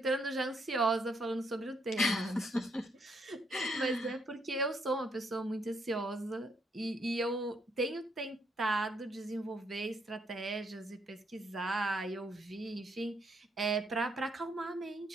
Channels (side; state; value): both; normal; correlation 0.73